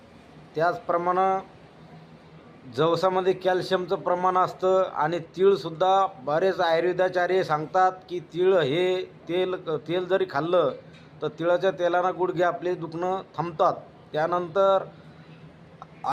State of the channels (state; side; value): identical; both; correlation 1.00